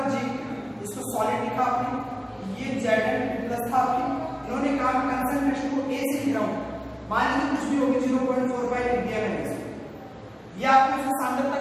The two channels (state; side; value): identical; both; correlation 1.00